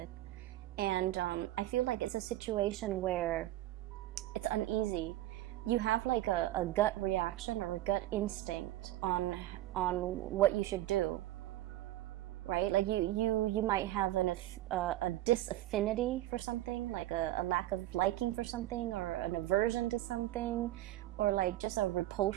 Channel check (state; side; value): quieter; left; 15.2 dB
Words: And I feel like it's a situation where it's uneasy. You have like a gut reaction or a gut instinct on what you should do, right? Like you might have a disaffinity for something, like a lack of liking for something, or an aversion to something, or like just a